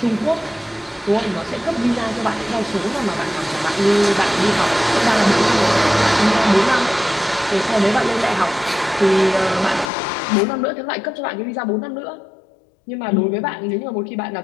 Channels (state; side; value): drops out; right; at 9.9 s